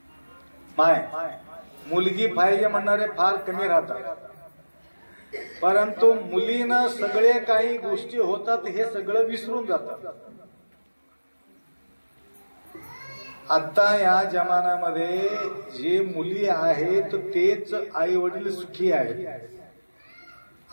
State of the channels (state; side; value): inverted; both; correlation -1.00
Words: मुलगी पाहिजे म्हणणारे फार कमी राहतात. परंतु मुलीनं सगळे काही गोष्टी होतात हे सगळं विसरून जातात. आता या जमान्यामध्ये जे मुली आहेत तेच आई वडील सुखी आहेत